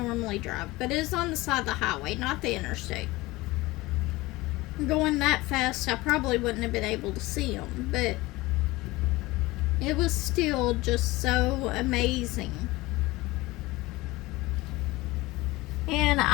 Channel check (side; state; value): right; quieter; 20.4 dB